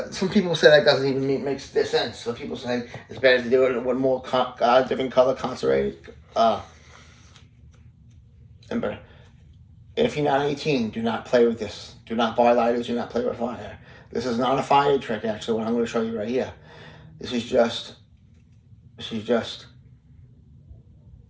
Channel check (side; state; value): both; identical; correlation 1.00